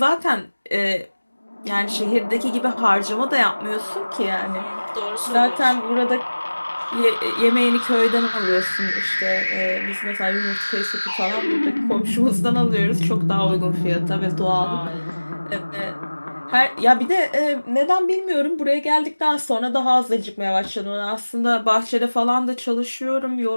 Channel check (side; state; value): both; inverted; correlation -1.00